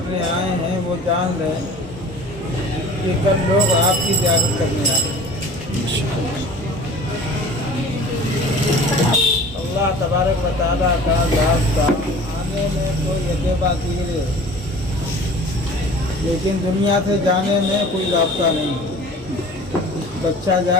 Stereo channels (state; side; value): normal; both; correlation 0.43